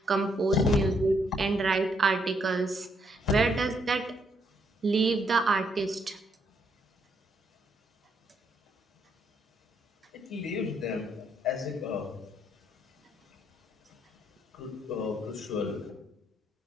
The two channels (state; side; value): normal; both; correlation 0.73